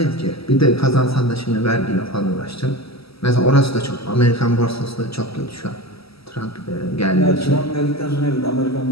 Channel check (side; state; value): right; late; 0.76 ms